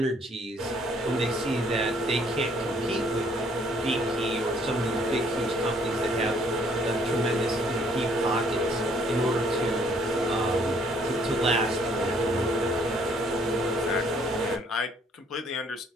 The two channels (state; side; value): normal; both; correlation 0.63